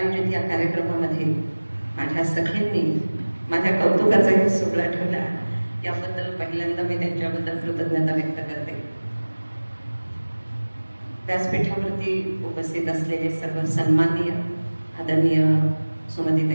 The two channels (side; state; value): both; inverted; correlation -1.00